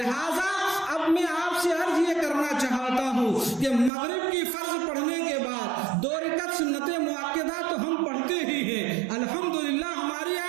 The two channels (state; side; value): drops out; left; at 3.9 s